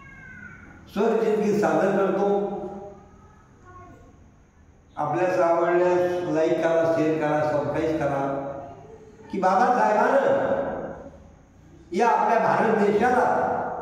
स्वरचितगीत सादर करतो. आपल्यास आवडल्यास लाईक करा, शेअर करा, सबस्क्राईब करा की बाबासाहेबांनं या आपल्या भारत देशाला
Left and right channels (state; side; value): identical; both; correlation 1.00